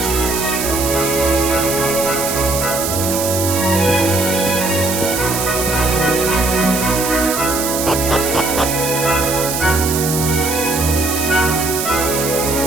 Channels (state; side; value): noise; right; hiss, 3 dB below the sound